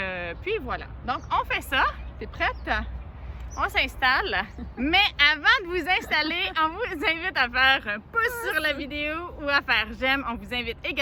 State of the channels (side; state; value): both; identical; correlation 1.00